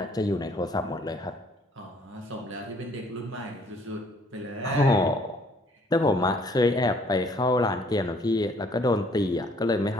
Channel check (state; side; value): normal; both; correlation 0.61